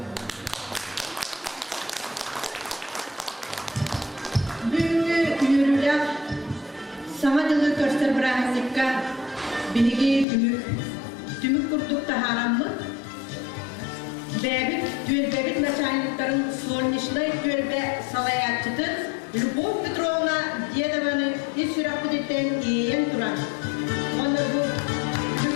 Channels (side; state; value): right; drops out; at 10.2 s